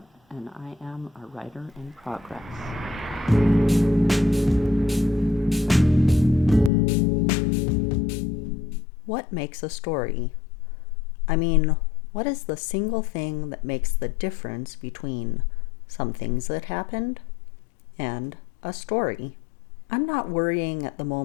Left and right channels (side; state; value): right; drops out; at 6.7 s